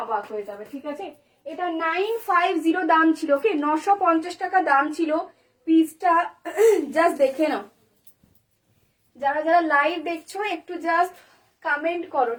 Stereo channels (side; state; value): both; identical; correlation 1.00